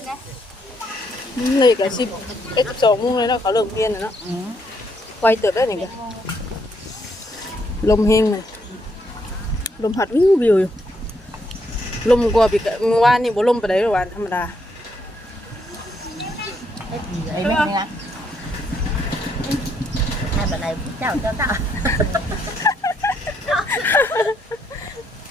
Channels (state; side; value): normal; both; correlation 0.74